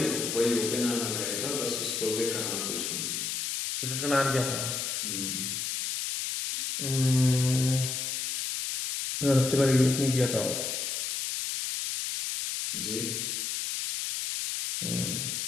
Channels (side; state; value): left; noise; hiss, 2 dB below the sound